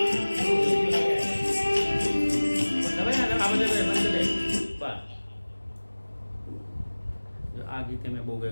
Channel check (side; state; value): both; inverted; correlation -1.00